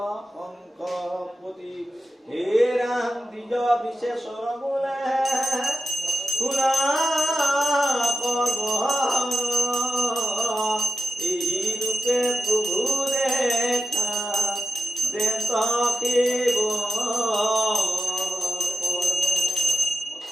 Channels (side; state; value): both; normal; correlation 0.92